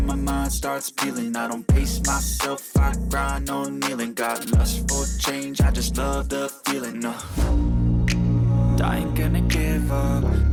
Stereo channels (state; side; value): identical; both; correlation 1.00